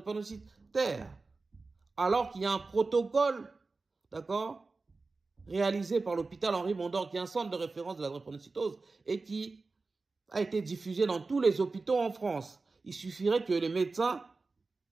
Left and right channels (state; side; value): quieter; left; 3.8 dB